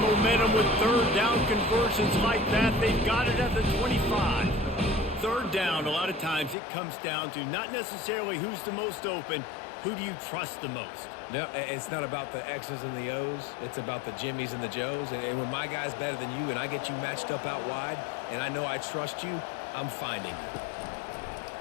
momentum with 3rd down conversions like that. They've got it at the 25. 3rd down, a lot of times it comes down to not necessarily who's the most open, who do you trust the most? No, it's not about the X's and the O's. It's about the Jimmies and the Joes. And when my guy's better than you and I get you matched up out wide and I know I trust you, I'm finding you.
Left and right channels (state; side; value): drops out; right; at 6.6 s